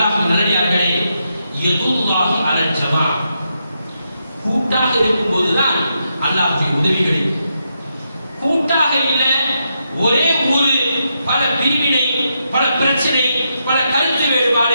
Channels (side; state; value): both; inverted; correlation -0.82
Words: நல்லடியார்களே, யதுல்லாஹி அலல் ஜமா. கூட்டாக இருக்கும் போதுதான் அல்லாஹ்வுடைய உதவி கிடைக்கும். கூட்டாக இல்ல, ஒரே ஊரு, பல பிரிவினை, பல பிரச்சனை, பல கருத்து